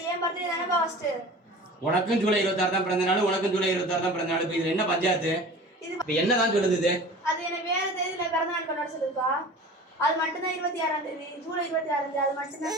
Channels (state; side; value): normal; both; correlation 0.39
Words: ஏன் பர்த்டே தானப்பா ஃபர்ஸ்ட். உனக்கும் ஜூலை 26 தான் பிறந்த நாள், உனக்கும் ஜூலை 26 தான் பிறந்த நாள். இப்போ இதுல என்ன பஞ்சாயத்து? இப்போ என்னதான் சொல்லுது இது? அது என்ன வேற தேதியில பிறந்த நாள் கொண்டாட சொல்லுப்பா. அது மட்டும் தான் 26ஆம் தேதி, ஜூலை 26 அது மட்டும் தான்.